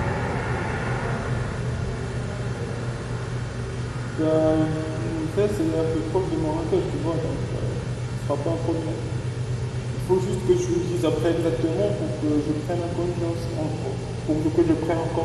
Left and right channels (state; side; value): identical; both; correlation 1.00